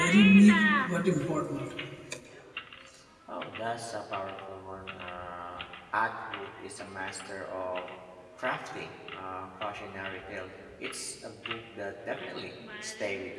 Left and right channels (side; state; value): both; identical; correlation 1.00